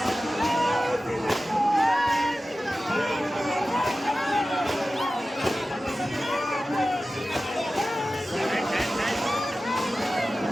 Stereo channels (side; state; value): both; normal; correlation 0.95